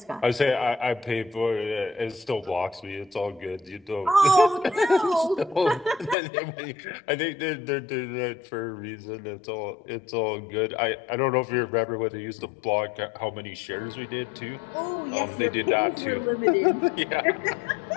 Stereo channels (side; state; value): right; drops out; at 6.2 s